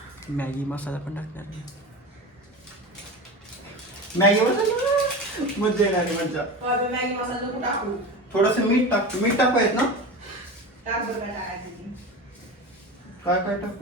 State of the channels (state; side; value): normal; both; correlation 0.28